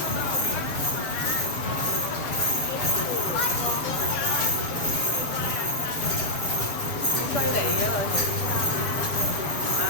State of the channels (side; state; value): right; late; 7.3 ms